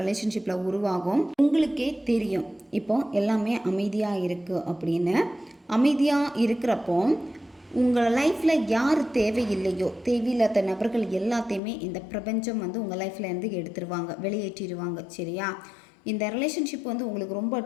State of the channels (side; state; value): right; drops out; at 11.6 s